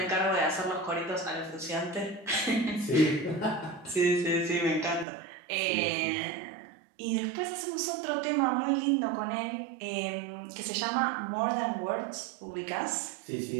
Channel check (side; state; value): left; drops out; at 5.1 s